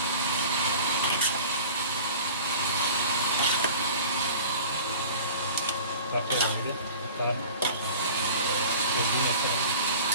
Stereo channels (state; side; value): inverted; both; correlation -0.42